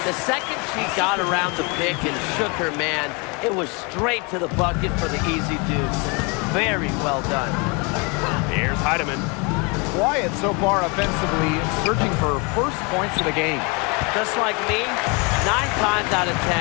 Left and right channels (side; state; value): right; quieter; 30.7 dB